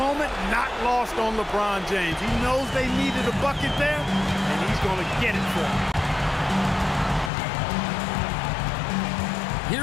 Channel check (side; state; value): right; drops out; at 7.3 s